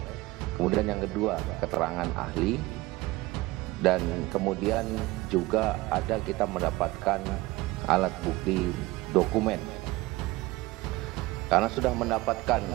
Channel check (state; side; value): quieter; left; 20.1 dB